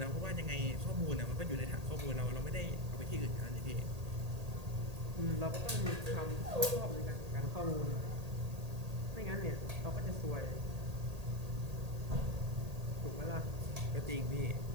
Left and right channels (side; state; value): left; late; 1.8 ms